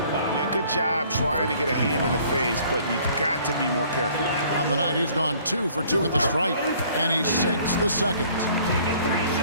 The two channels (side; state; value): both; inverted; correlation -0.57